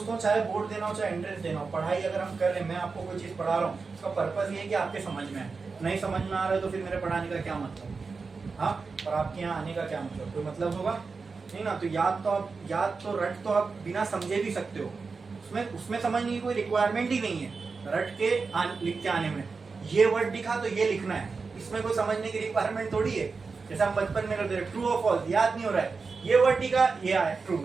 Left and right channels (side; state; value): left; quieter; 4.6 dB